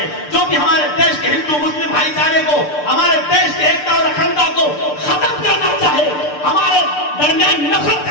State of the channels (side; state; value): right; late; 6.7 ms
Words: جو بھی ہمارے دیش کے ہندو مسلم بھائی چارے کو, ہمارے دیش کے ایکتا اور اکھنڈتا کو ختم کرنا چاہے, ہمارے درمیان